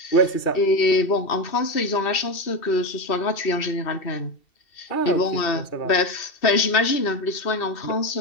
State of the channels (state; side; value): late; right; 2.7 ms